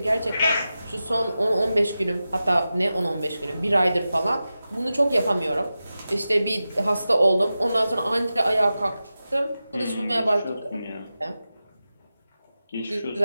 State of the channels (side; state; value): both; inverted; correlation -0.93